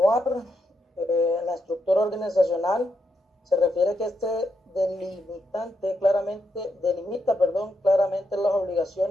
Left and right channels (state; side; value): normal; both; correlation 0.81